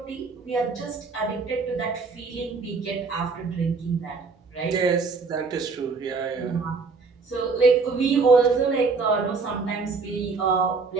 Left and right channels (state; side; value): quieter; left; 4.5 dB